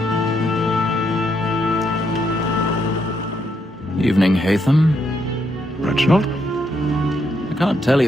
Evening, Hatham. Reginald? I can't tell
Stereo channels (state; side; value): normal; both; correlation 0.77